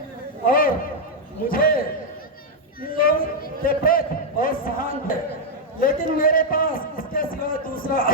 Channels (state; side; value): normal; both; correlation 0.00